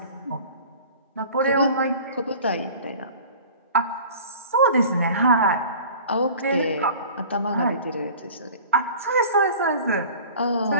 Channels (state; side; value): inverted; both; correlation -0.43